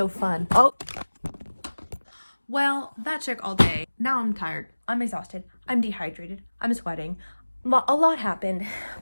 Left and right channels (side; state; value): both; inverted; correlation -1.00